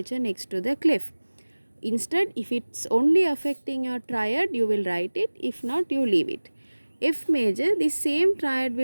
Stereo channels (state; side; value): inverted; both; correlation -1.00